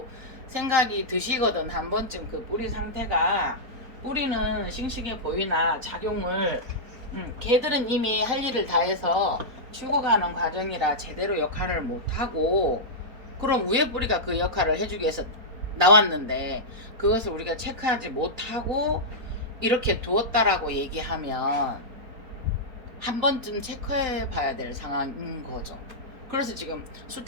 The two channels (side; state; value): left; late; 4.3 ms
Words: 생각이 드시거든. 한 번쯤 그 뿌리 상태가 뿌리는 싱싱해 보이나 작용을 걔들은 이미 할 일을 다 해서 죽어가는 과정이라 제대로 역할을 못하고 그럼 위에 뿌리가 그 역할을 해주기 위해서 나왔는데 그것을 우리가 체크하지 못하고 이렇게 두었다라고 얘기하면 한 번쯤 체크해 봐야 될 상황인 거죠. 그래서 지금